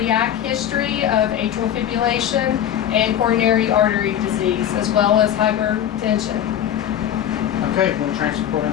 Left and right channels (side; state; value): right; quieter; 10.3 dB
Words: history of atrial fibrillation and coronary artery disease, as well as hypertension. Okay, we'll transport